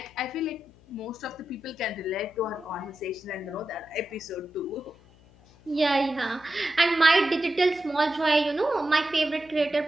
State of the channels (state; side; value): noise; left; hum, 26 dB below the sound